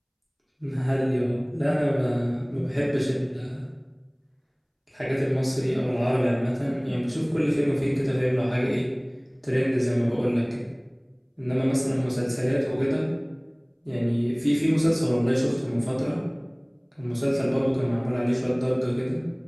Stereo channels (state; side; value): identical; both; correlation 1.00